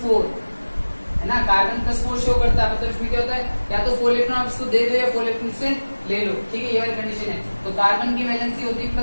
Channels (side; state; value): both; inverted; correlation -1.00